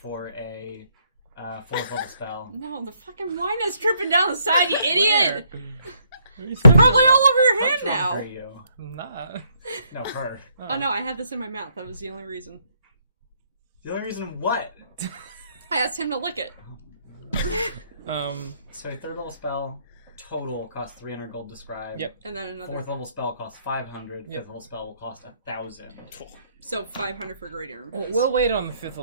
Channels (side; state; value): both; inverted; correlation -0.70